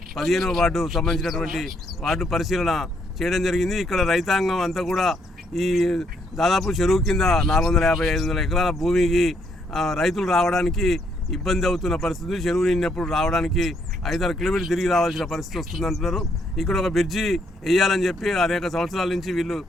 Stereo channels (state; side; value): normal; both; correlation 0.72